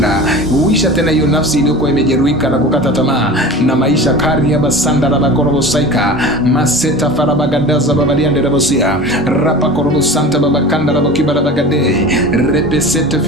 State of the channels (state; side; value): normal; both; correlation 0.36